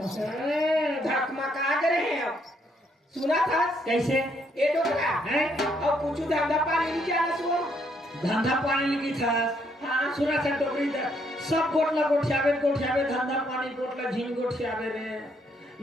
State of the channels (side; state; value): both; normal; correlation 0.72